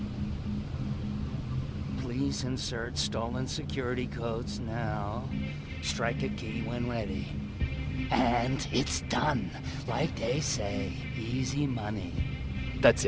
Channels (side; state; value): both; identical; correlation 1.00